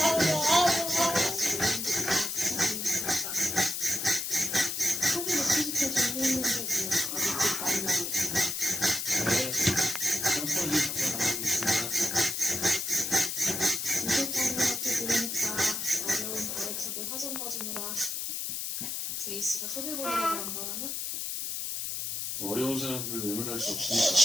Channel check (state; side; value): noise; left; hiss, 3 dB below the sound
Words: 제이씨가 소개보려고 한 거라면? 어려운 사람들 외면할 수